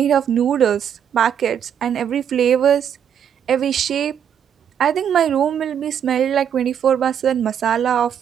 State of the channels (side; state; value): left; quieter; 8.7 dB